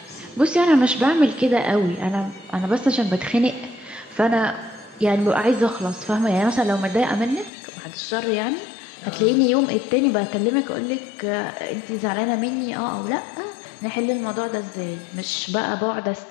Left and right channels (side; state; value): right; drops out; at 7.5 s